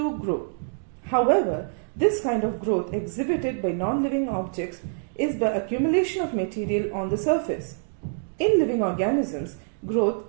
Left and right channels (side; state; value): left; silent; digital silence